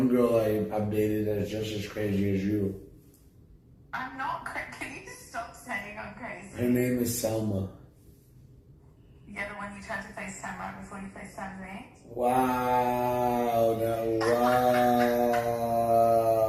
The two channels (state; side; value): identical; both; correlation 1.00